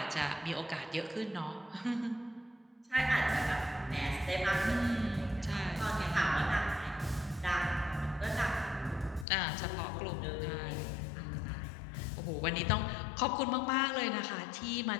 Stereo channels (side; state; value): right; drops out; at 9.2 s